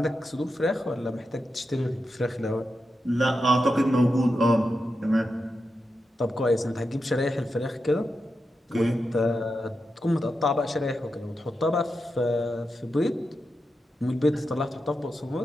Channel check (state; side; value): normal; both; correlation 0.88